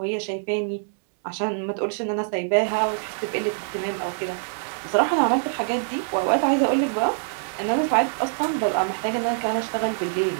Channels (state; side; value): silent; left; digital silence